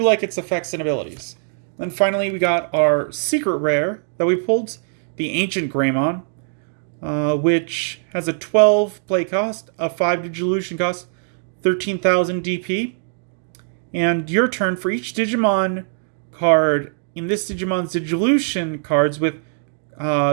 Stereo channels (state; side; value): silent; left; 65 dB below the other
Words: like its effects and abilities. Then finally, we got our secret rare that we pulled, the Ancient Greymon, which has a 12 play cost, a 5 Digivolution cost, 13,000 DP. And your turn, for each Digimon card in this Digimon's Digivolution cards with